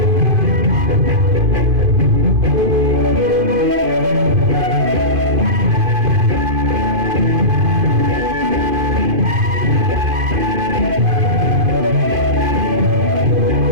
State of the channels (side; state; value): left; late; 2.5 ms